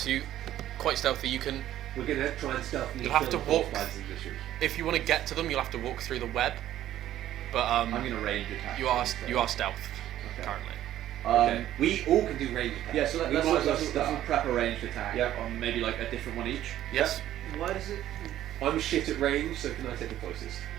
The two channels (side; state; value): left; quieter; 12.7 dB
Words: you quite stealthy. You can, We're going to try and stealthily You'll have kill to the 4 walk. spiders in this room. if you want to get to them, you'll have to walk through the web. But I'm gonna range attack. you are them, so- you are stealth Okay. currently. Okay. We all can do range attacks. Yeah, so We let's might as well let's start. prep a ranged attack Yep. on maybe like a different one each. Yes. Why does it... I'm shit at range, so can I take the closest?